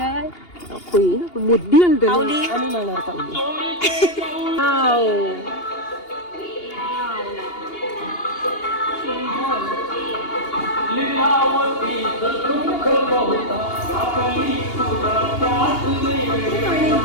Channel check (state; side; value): late; right; 2.8 ms